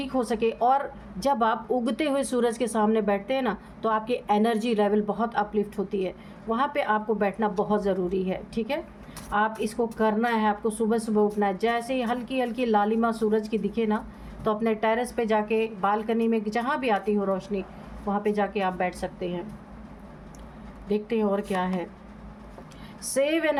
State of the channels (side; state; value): both; identical; correlation 1.00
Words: हो सके। और जब आप उगते हुए सूरज के सामने बैठते हैं ना, तो आपकी एनर्जी लेवल बहुत अपलिफ्ट होती है, वहाँ पे आपको बैठना बहुत ज़रूरी है, ठीक है। आप इसको करना है, आपको सुबह सुबह उठना है। जैसे ही हल्की हल्की लालिमा सूरज की दिखे ना, तो अपने टेरेस पे जाके, बालकनी में, जहाँ भी आती हो रोशनी, वहाँ पे जाके आप बैठ सकते हैं। देखते हैं और क्या है। Save